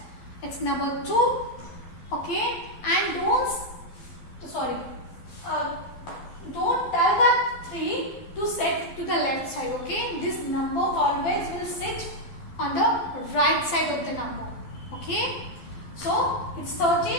It's number 2. Okay, and don't tell that 3 to set to the left side. Okay, this number always will sit on the right side of the number. Okay, so it's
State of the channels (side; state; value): right; late; 12 ms